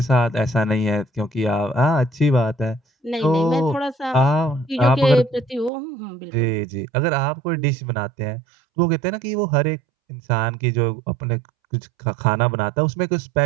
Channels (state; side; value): drops out; left; at 5.7 s